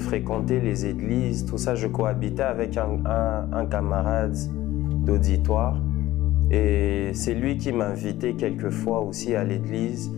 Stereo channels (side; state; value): right; quieter; 15.8 dB